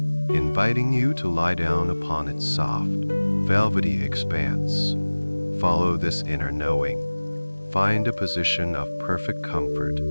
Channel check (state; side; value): inverted; both; correlation -1.00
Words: you to lie down upon its soft, velvety expanse. Follow this inner knowing. Find a position of perfect comfort,